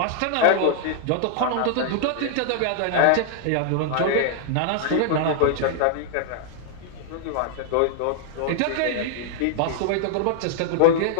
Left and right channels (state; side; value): different; both; correlation -0.01